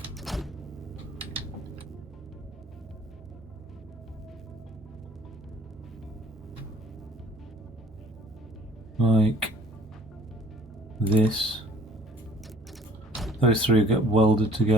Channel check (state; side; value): normal; both; correlation 0.54